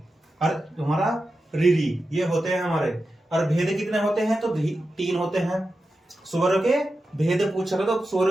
और हमारा री, ये होते हैं हमारे। और भेद कितने होते हैं? तो 3 होते हैं। स्वर के भेद पूछेगा तो स्वर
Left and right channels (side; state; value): both; normal; correlation 0.91